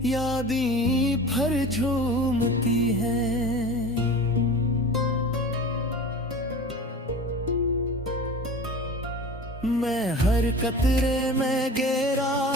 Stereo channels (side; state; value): both; normal; correlation 0.36